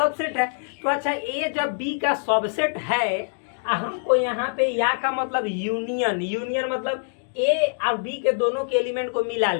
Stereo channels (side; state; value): right; silent; digital silence